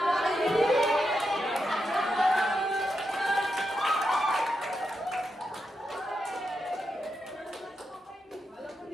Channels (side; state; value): both; normal; correlation 0.85